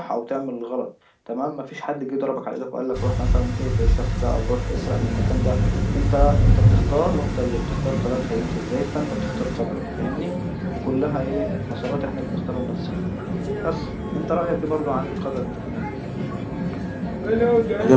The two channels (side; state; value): both; identical; correlation 1.00